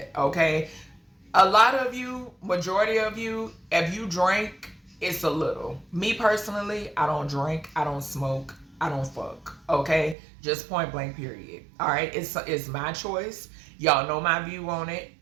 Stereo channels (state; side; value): drops out; left; at 10.2 s